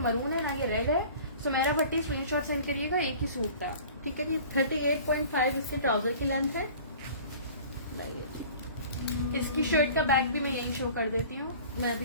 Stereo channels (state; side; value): inverted; both; correlation -0.45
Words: है, ना ये रेड है। सुमेरा भट्टी स्क्रीनशॉट सेंड करिएगा, एक ही सूट था। ठीक है जी। 38.5 इसके ट्राउजर की लेंथ है। लाइए जी। इसकी शर्ट का बैक भी मैं यही शो कर देती हूँ। मैं